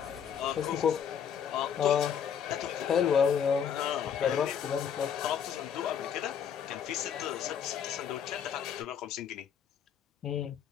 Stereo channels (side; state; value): right; quieter; 8.0 dB